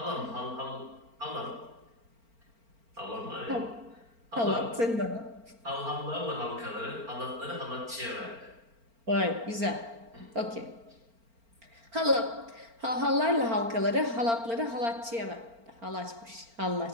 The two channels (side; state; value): left; late; 4.4 ms